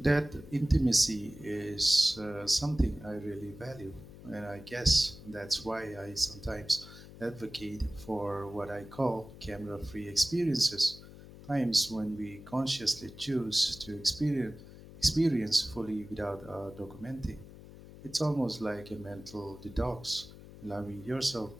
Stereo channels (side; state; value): left; noise; hum, 17 dB below the sound